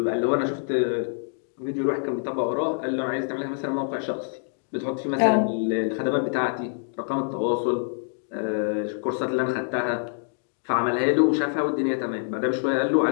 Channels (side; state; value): right; silent; digital silence